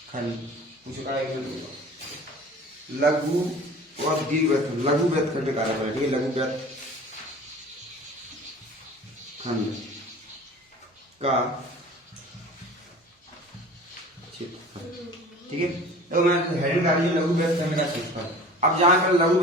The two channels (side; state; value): both; normal; correlation 0.42